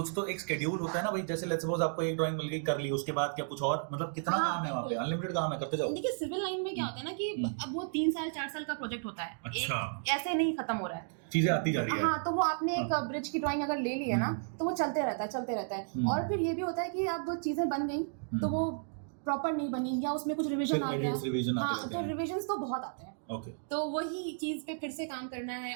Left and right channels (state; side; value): silent; left; digital silence